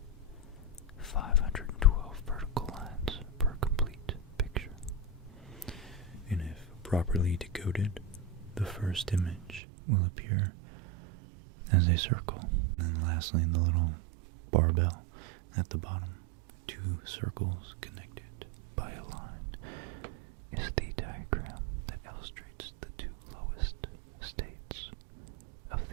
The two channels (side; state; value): left; drops out; at 9.6 s